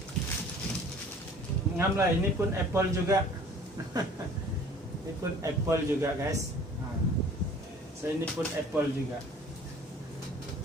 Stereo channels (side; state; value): both; normal; correlation 0.50